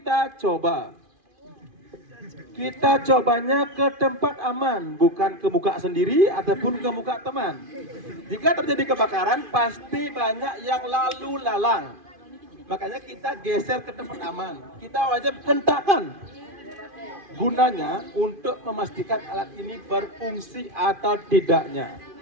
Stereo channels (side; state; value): left; late; 2.5 ms